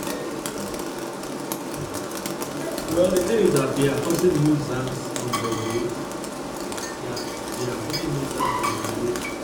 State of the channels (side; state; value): both; identical; correlation 1.00